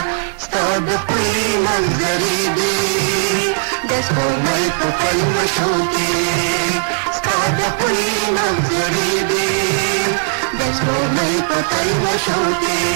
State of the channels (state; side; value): silent; left; digital silence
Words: ستا د ښکلي منظرې دي د سپوږمۍ په پلوشو کې ستا د ښکلي منظرې دي د سپوږمۍ په پلوشو کې